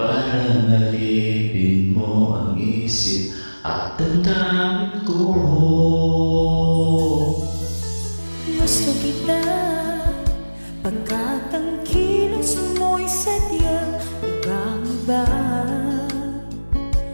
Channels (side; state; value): both; inverted; correlation -1.00